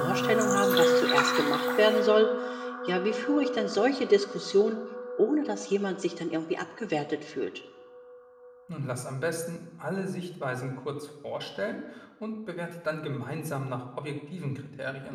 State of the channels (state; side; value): identical; both; correlation 1.00